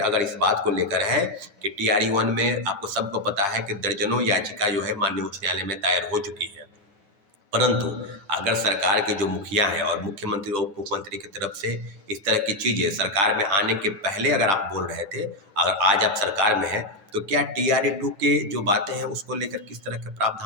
इस बात को लेकर है कि टीआरई 1 में आपको सबको पता है कि दर्जनों याचिका जो है माननीय उच्च न्यायालय में दायर हो चुकी है। परंतु अगर सरकार के जो मुखिया हैं और मुख्यमंत्री और उप मुख्यमंत्री की तरफ से इस तरह की चीज़ें सरकार में आने के पहले अगर आप बोल रहे थे, अगर आज आप सरकार में हैं, तो क्या टीआरई 2 के जो बातें हैं उसको लेकर किस तरह के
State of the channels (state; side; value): late; left; 9.2 ms